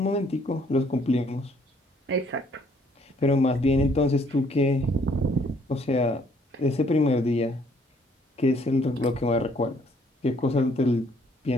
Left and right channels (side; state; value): both; normal; correlation 0.64